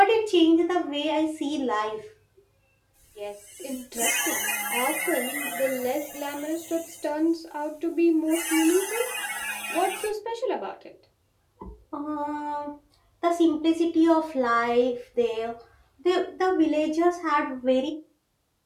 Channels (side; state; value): both; identical; correlation 1.00